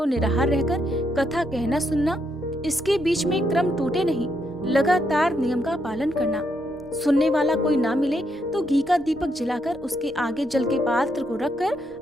निराहार रहकर कथा कहना सुनना। इसके बीच में क्रम टूटे नहीं, लगातार नियम का पालन करना। सुनने वाला कोई ना मिले तो घी का दीपक जलाकर उसके आगे जल के पात्र को रखकर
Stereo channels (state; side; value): normal; both; correlation 0.77